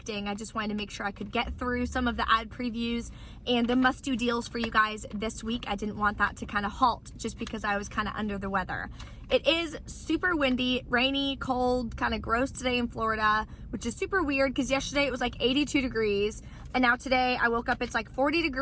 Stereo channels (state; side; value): identical; both; correlation 1.00